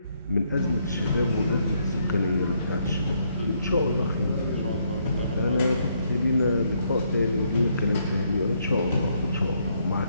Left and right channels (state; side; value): inverted; both; correlation -0.73